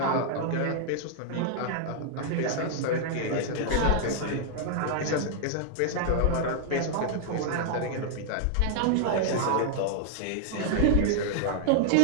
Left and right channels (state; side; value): different; both; correlation 0.00